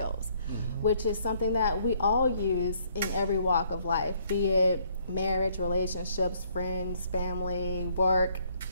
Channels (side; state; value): both; inverted; correlation -0.66